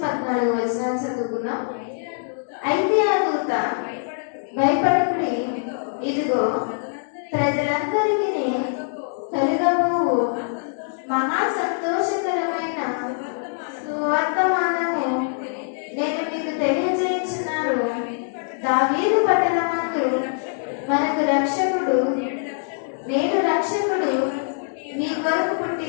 వచనాలు చదువుకుందాం. అయితే ఆ దూత భయపడకుడి, ఇదిగో ప్రజలందరికీ కలుగబోవు మహా సంతోషకరమైన సువర్తమానము నేను మీకు తెలియజేయుచున్నాను. దావీదు పట్టణమందు మనకు రక్షకుడు, నేడు రక్షకుడు మీ కొరకు పుట్టి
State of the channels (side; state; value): right; silent; digital silence